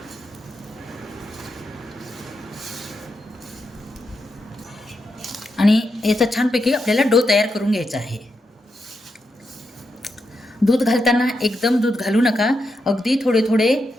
आणि याचा छानपैकी आपल्याला डो तयार करून घ्यायचा आहे. दूध घालताना एकदम दूध घालू नका, अगदी थोडे थोडे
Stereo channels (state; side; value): normal; both; correlation 0.85